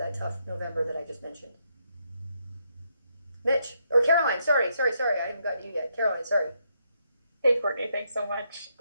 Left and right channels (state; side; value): inverted; both; correlation -0.78